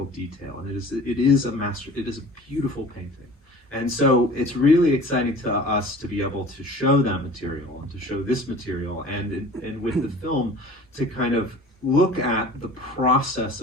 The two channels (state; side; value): normal; both; correlation 0.43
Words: detail. And it is a beautiful painting. And so it's really exciting to us to be able to show that material and to show this material, and with the film to kind of look at the process